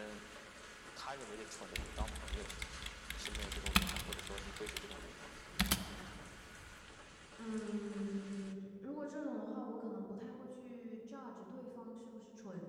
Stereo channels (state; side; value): identical; both; correlation 1.00